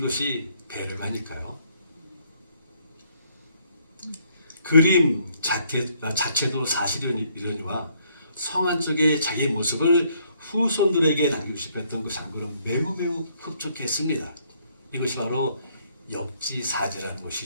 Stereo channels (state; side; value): inverted; both; correlation -0.68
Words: 배려가니까요. 그림 자체도 사실이려니와 성한 쪽의 자기의 모습을 후손들에게 남기고 싶었던 그 장군은 매우 흡족했습니다. 이것이 바로 역지사지라는